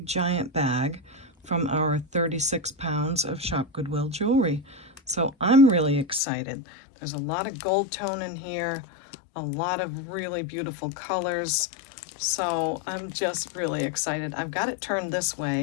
giant bag from our 36 pounds of ShopGoodWill Jewelry. So I'm really excited. There's a lot of gold tone in here, a lot of really beautiful colors. So I'm just really excited. I've got it turned this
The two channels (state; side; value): drops out; right; at 6.2 s